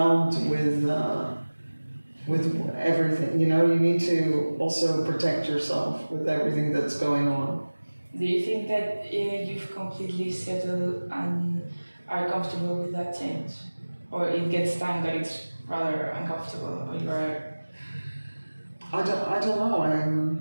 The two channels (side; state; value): both; inverted; correlation -1.00